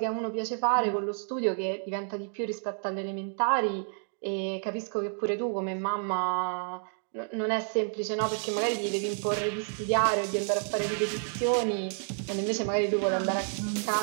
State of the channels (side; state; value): left; silent; 58 dB below the other